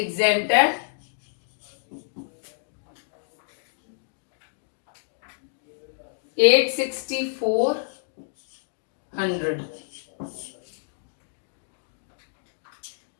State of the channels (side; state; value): right; silent; digital silence